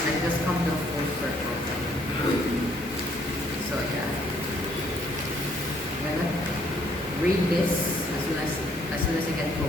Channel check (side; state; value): both; normal; correlation 0.66